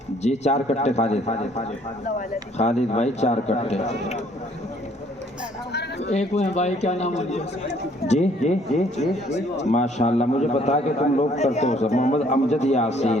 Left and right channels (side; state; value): both; normal; correlation 0.62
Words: جی. 4 کٹے خالد بھائی 4 کٹے. ایک وہ بھائی کیا نام ہے جی ماشاءاللہ. مجھے بتا کہ تم لوگ کرتے ہو سب. محمد امجد